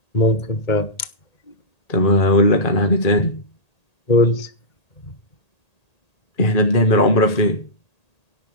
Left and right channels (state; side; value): late; right; 1.8 ms